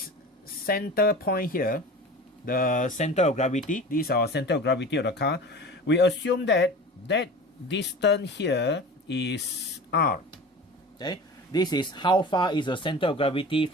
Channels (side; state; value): both; normal; correlation 0.36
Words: center point here, the center of gravity, this is our center of gravity of the car. We assume that that distance here is R. Okay, this is how far is the center of gravity